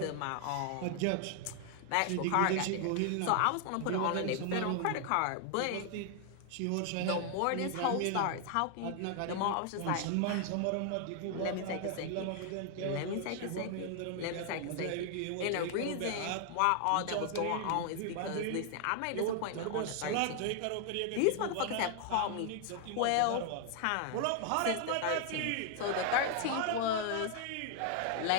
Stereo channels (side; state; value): both; different; correlation 0.00